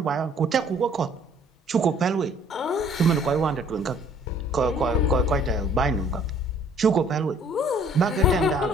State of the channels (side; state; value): both; normal; correlation 0.57